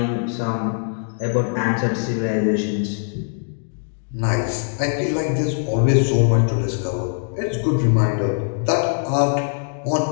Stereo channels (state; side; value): silent; right; digital silence